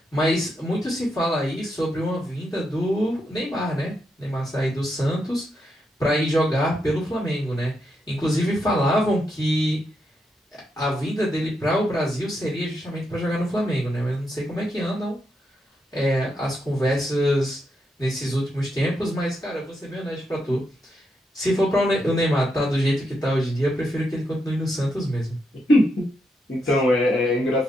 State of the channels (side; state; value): both; normal; correlation 0.82